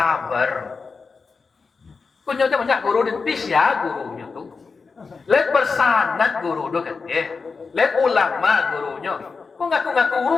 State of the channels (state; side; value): quieter; right; 4.7 dB